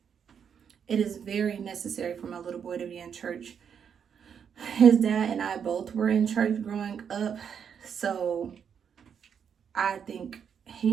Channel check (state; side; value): quieter; left; 7.5 dB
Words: It is very necessary for my little boy to be in church. His dad and I both were in church growing up, so I think